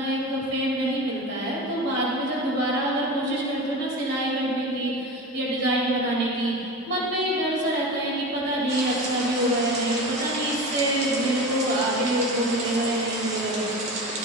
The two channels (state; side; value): normal; both; correlation 0.29